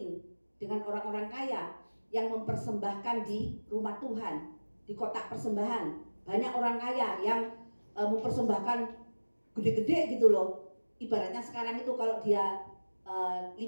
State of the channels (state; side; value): inverted; both; correlation -1.00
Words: dengan orang-orang kaya yang mempersembahkan di rumah Tuhan, di kotak persembahan. Banyak orang kaya yang mempersembahkan gede-gede gitu loh. Ibaratnya sekarang itu kalau dia 5